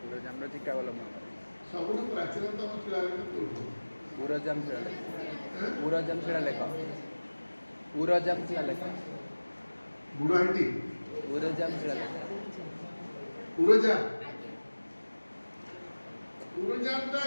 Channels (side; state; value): both; inverted; correlation -1.00